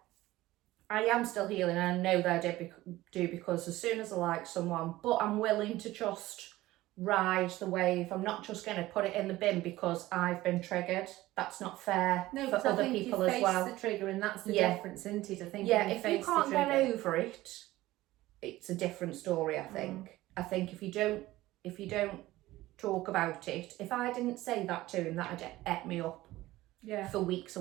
I am still healing, and I know that I do because as soon as I like someone, but I'm willing to just ride the wave. I'm not just going to put it in the bin because I've been triggered. That's not fair for other people as well. The trigger, and that's the difference, isn't it? I think. Yeah, if you can't get over it, it's a different story. I think. I think if you don't talk about it, if I didn't say that to him, that'd ate me up. Yeah. For weeks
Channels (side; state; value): left; quieter; 17.1 dB